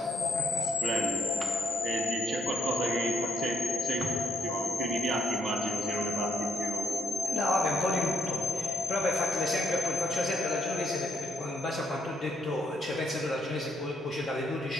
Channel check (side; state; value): both; normal; correlation 0.73